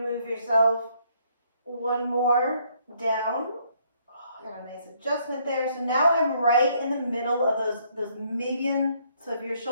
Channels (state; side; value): inverted; both; correlation -0.69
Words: to move yourself one more down. Oh, got a nice adjustment there. So now I'm right in the middle of those median. So if your